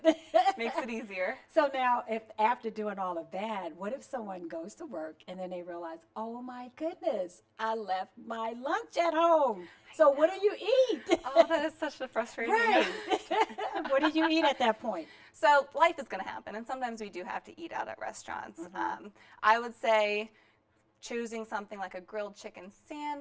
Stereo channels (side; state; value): both; identical; correlation 1.00